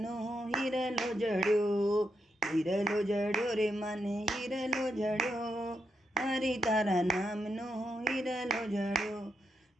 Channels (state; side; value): normal; both; correlation 0.82